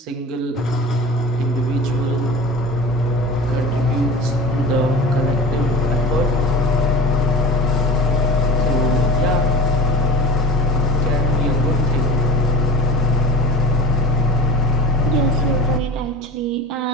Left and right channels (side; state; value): both; normal; correlation 0.34